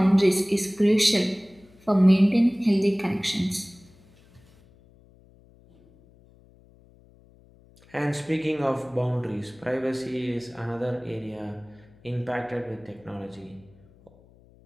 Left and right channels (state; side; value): noise; left; hum, 28 dB below the sound